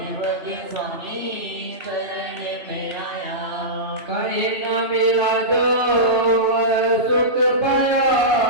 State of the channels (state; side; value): late; left; 3.0 ms